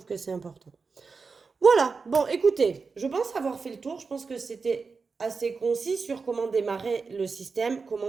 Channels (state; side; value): quieter; left; 4.7 dB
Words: que c'est important. Voilà, bon, écoutez, je pense avoir fait le tour. Je pense que c'était assez concis sur comment démarrer le système,